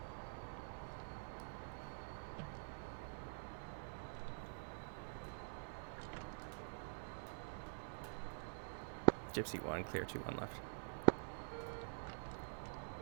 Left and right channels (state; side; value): silent; left; digital silence